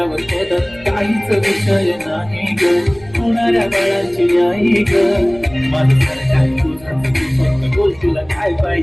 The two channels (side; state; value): right; noise; rumble, 24 dB below the sound